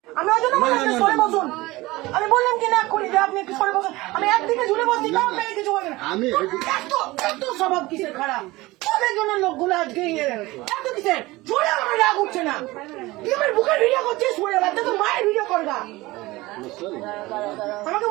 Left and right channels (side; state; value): left; quieter; 20.1 dB